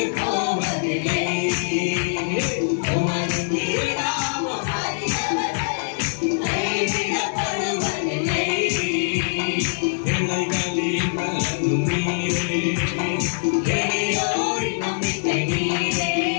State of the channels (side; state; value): right; silent; digital silence